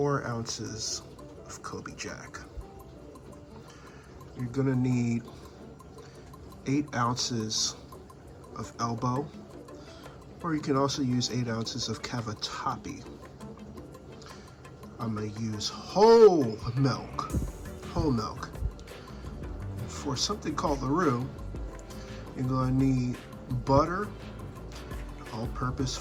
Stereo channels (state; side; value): identical; both; correlation 1.00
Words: ounces of Coby Jack. You're going to need 8 ounces of elbow, or you can also use 8 ounces of cavatappi. I'm going to use whole milk. For something called the roux, you're going to need butter, all-purpose